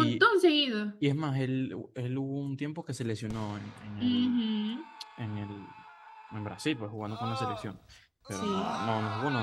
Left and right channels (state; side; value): identical; both; correlation 1.00